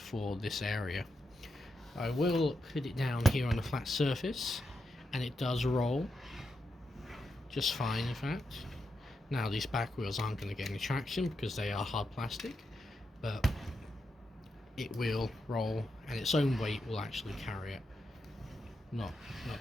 for this area. I will put it down here on a flat surface, and it does roll just fine, in fact. Now, these back wheels aren't going to get any traction because they are hard plastic, but it will roll, and its own weight will actually carry it. Not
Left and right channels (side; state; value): both; normal; correlation 0.85